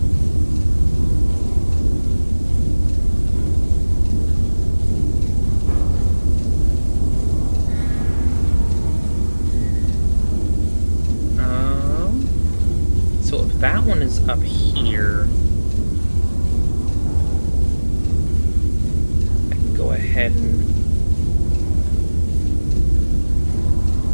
So if that one is up here, I can go ahead and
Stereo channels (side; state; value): both; inverted; correlation -1.00